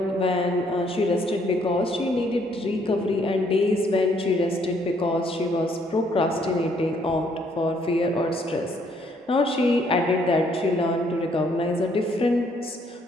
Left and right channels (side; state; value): both; normal; correlation 0.67